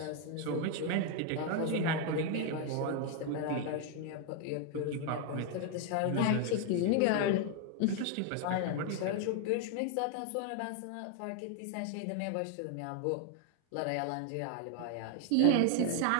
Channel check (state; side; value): different; both; correlation 0.00